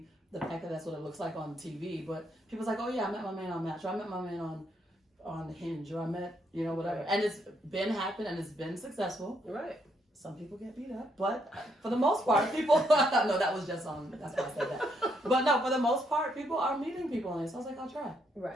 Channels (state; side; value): normal; both; correlation 0.74